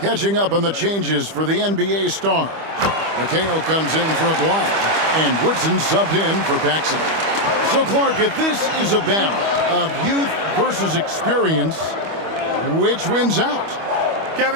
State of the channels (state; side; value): late; left; 25 ms